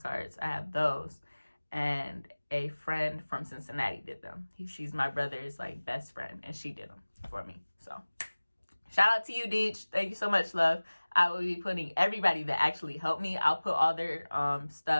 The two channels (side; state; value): both; inverted; correlation -1.00